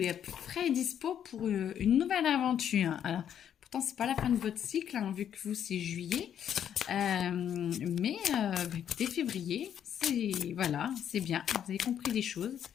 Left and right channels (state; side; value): quieter; right; 9.3 dB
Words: prêt et dispo pour une nouvelle aventure. Alors, pourtant, c'est pas la fin de votre cycle, hein, vu que vous, c'est juillet. Mais écoutez, février, c'est voilà, c'est bien. Vous avez compris des choses.